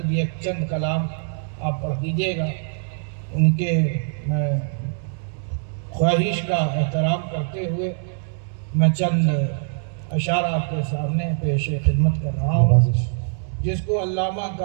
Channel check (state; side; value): silent; left; digital silence